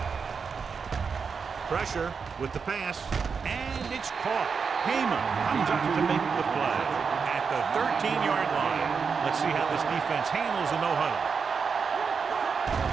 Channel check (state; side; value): quieter; left; 5.7 dB